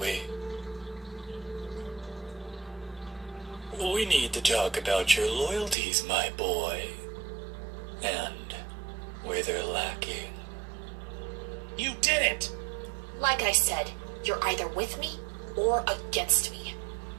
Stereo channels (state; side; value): drops out; left; at 5.8 s